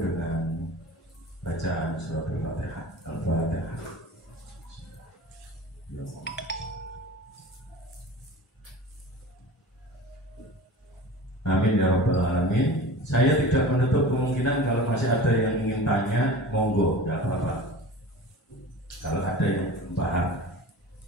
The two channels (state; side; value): normal; both; correlation 0.36